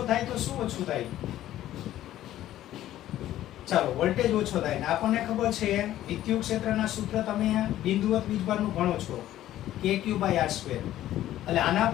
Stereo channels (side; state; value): right; quieter; 13.3 dB